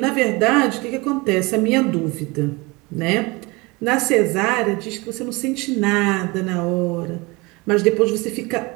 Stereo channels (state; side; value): quieter; left; 25.0 dB